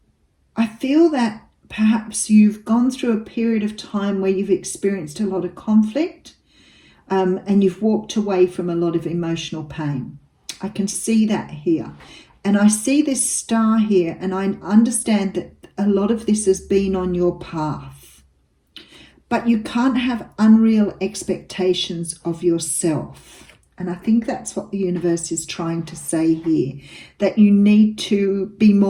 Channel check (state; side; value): identical; both; correlation 1.00